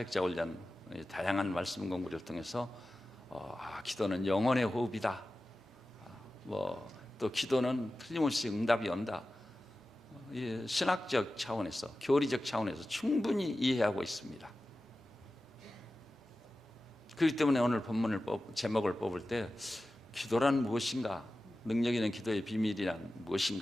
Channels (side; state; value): both; normal; correlation 0.95